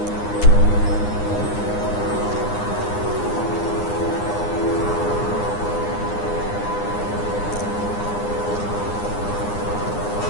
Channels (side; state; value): right; late; 9.8 ms